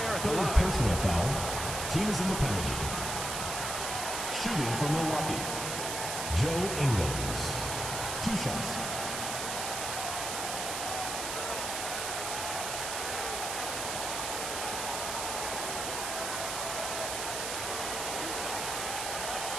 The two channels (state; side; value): noise; right; hiss, 3 dB below the sound